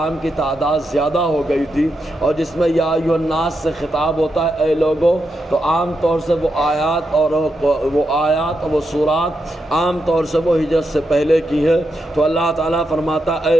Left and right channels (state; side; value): normal; both; correlation 0.85